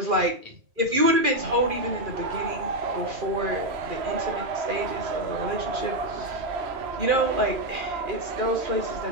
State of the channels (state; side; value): late; left; 2.4 ms